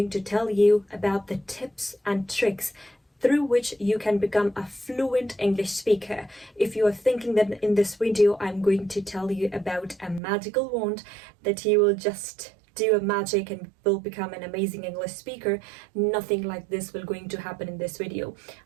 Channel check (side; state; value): left; drops out; at 10.2 s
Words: to tell you about the tips and tricks through which you can become a fluent English speaker. If you are thinking that in this video, I'm going to tell you about a magical wand that you will just do a magic and will become an amazing English speaker, nothing like this will going to happen in this video.